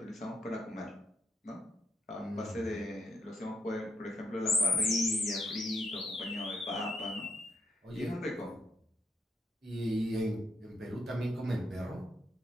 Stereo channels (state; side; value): normal; both; correlation 0.76